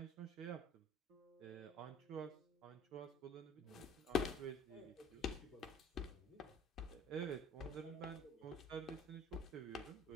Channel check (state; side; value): normal; both; correlation 0.50